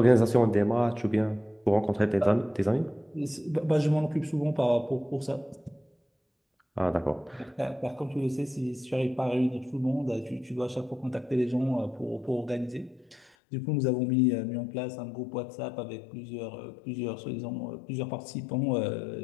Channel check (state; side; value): drops out; right; at 13.3 s